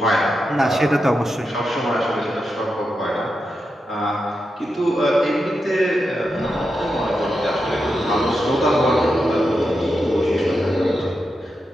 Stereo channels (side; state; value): both; normal; correlation 0.87